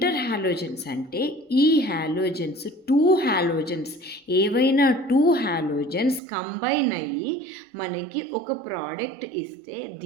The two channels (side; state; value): left; drops out; at 6.2 s